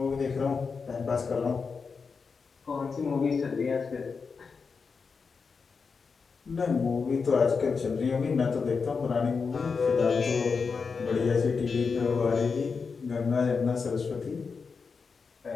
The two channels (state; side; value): quieter; right; 5.2 dB